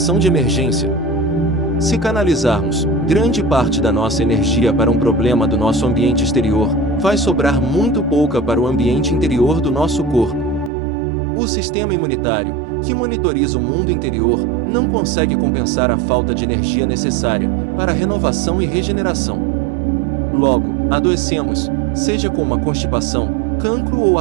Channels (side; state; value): left; drops out; at 10.7 s